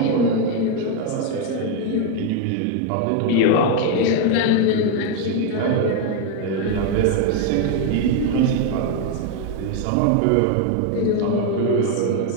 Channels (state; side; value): different; both; correlation 0.01